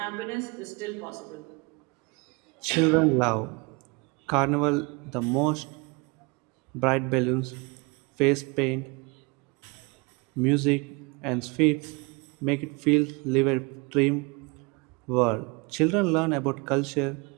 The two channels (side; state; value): left; quieter; 28.4 dB